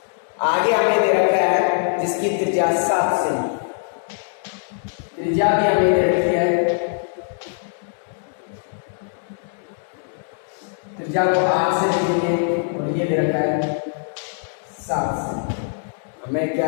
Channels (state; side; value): silent; right; digital silence